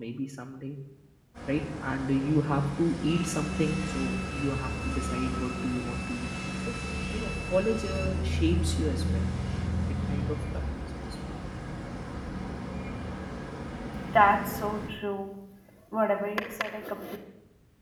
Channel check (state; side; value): identical; both; correlation 1.00